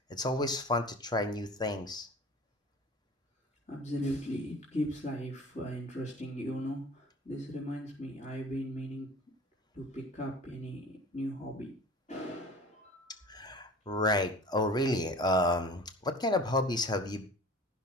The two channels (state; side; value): normal; both; correlation 0.42